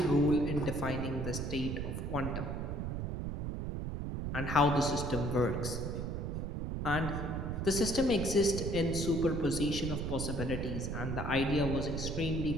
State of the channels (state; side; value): noise; right; rumble, 3 dB below the sound